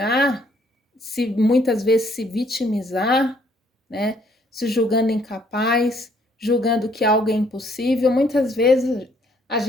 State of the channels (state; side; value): normal; both; correlation 0.65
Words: se muitas vezes se vitimizar, né? Se julgando incapaz, julgando que algo é impossível. Muitas vezes a